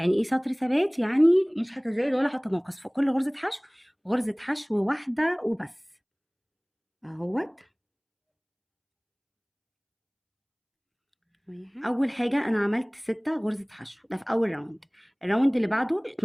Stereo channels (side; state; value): both; identical; correlation 1.00